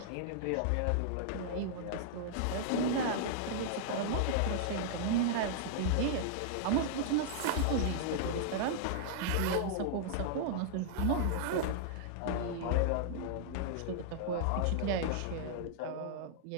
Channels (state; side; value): different; both; correlation -0.01